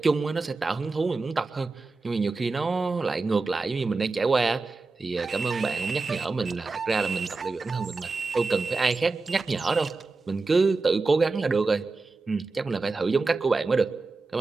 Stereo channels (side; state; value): left; quieter; 3.8 dB